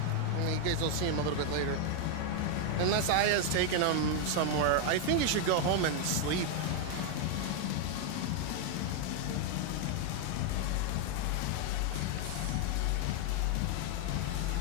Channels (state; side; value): different; both; correlation 0.00